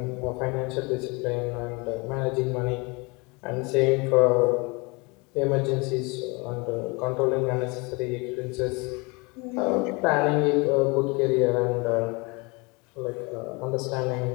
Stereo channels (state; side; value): quieter; right; 28.0 dB